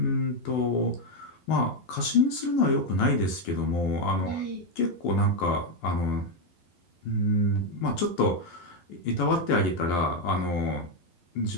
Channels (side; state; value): right; late; 11 ms